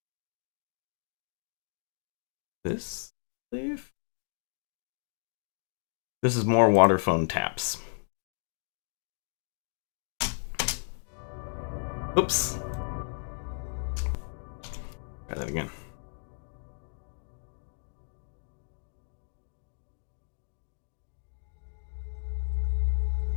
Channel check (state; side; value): silent; right; digital silence